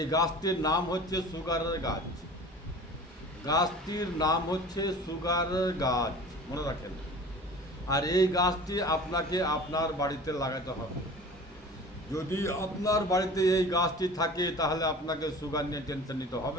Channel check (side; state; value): both; normal; correlation 0.41